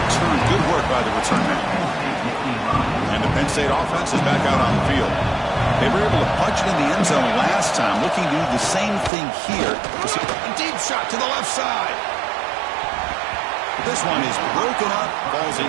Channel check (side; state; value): left; drops out; at 9.1 s